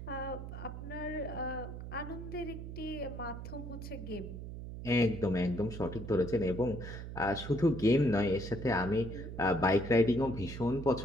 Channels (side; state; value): right; noise; hum, 9 dB below the sound